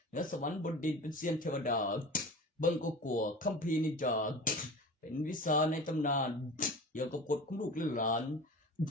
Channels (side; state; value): both; normal; correlation 0.35